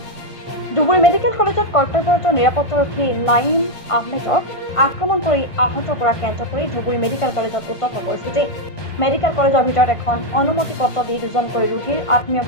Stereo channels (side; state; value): right; late; 1.5 ms